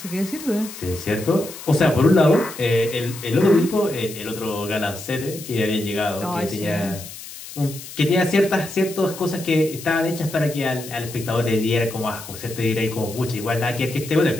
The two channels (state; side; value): noise; left; hiss, 13 dB below the sound